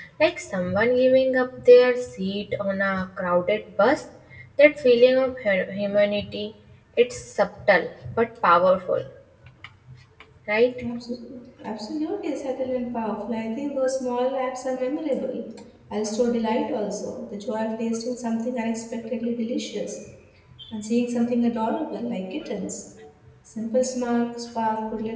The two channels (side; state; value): both; identical; correlation 1.00